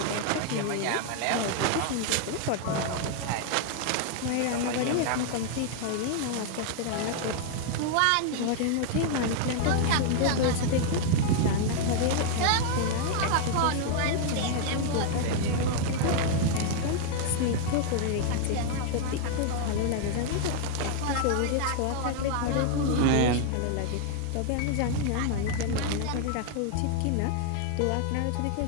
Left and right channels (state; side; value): different; both; correlation 0.00